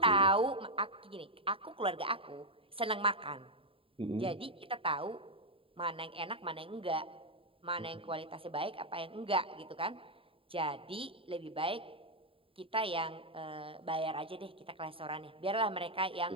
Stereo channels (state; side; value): late; left; 0.26 ms